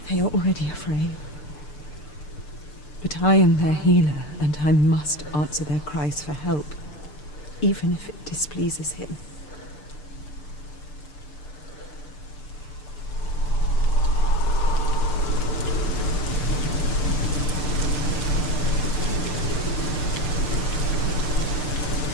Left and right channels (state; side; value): late; right; 6.7 ms